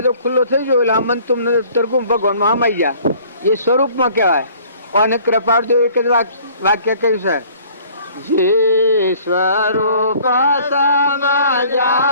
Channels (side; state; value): both; inverted; correlation -0.54